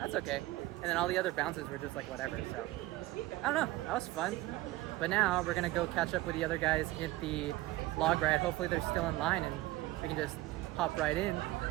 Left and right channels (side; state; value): left; quieter; 17.9 dB